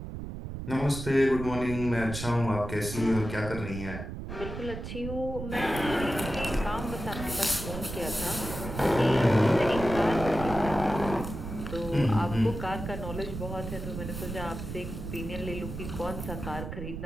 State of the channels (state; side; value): noise; right; rumble, 8 dB below the sound